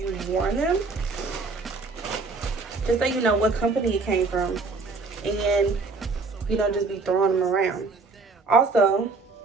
worn them, just so you know what company it came from and you don't just be throwing them around. Also,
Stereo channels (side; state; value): left; quieter; 4.0 dB